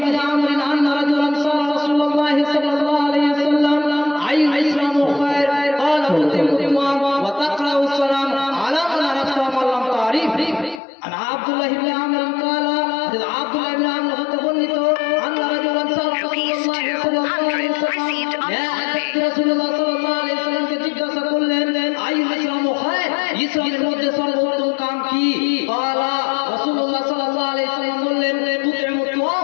আমর আন্না রাজুলান সাল্লাল্লাহু রাসূলুল্লাহ সাল্লাল্লাহু আলাইহি ওয়াসাল্লাম আইয়ুল ইসলামু খায়র ক্বালা উতিমুমা ওয়া তাকরাউ সালাম আলা মান আরাফতা ওয়া লাম তারিফ। আব্দুল্লাহ ইবনে আমর ক্বালা, আব্দুল্লাহ ইবনে আমর হতে বর্ণিত, আন্না রাজুলান সাল্লাল্লাহু আলাইহি ওয়াসাল্লাম কে জিজ্ঞাসা করলেন, আইয়ুল ইসলামু খায়র, ইসলামের মধ্যে সর্বোত্তম কাম কি? ক্বালা, রাসূলুল্লাহ সাল্লাল্লাহু আলাইহি ওয়াসাল্লাম বললেন, তুতিমু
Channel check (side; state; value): right; drops out; at 10.8 s